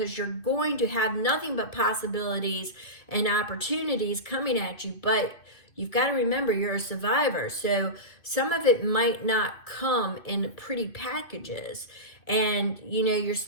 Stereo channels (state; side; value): late; right; 2.6 ms